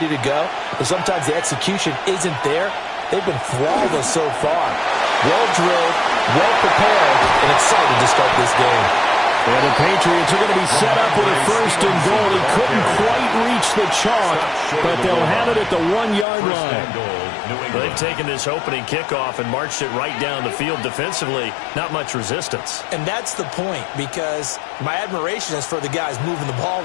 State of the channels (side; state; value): right; drops out; at 16.2 s